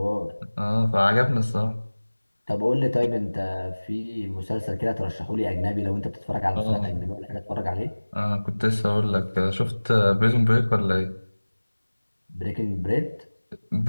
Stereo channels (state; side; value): inverted; both; correlation -1.00